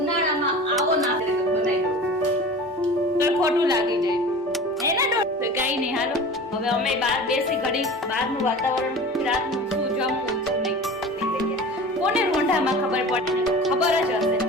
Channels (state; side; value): normal; both; correlation 0.37